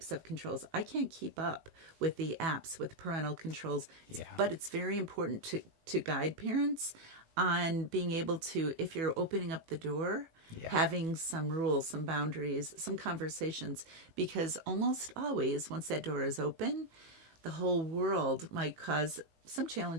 of controls? I can't keep up with the apps, with parental controls. But it's very important to guide parents on being able to, if you're opening up the door, having some rules, some boundaries, some conversations. Because almost always, once that door is open, the whole world might cause some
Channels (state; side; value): late; left; 18 ms